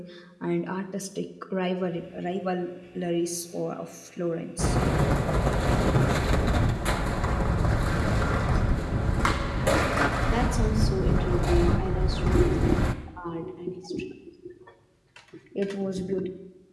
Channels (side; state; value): both; identical; correlation 1.00